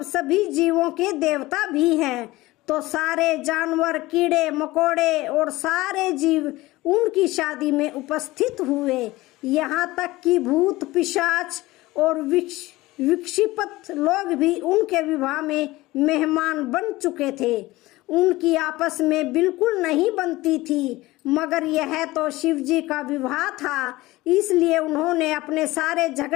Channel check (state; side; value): quieter; right; 19.1 dB